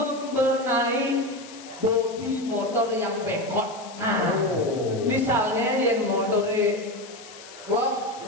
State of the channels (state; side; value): noise; left; hiss, 18 dB below the sound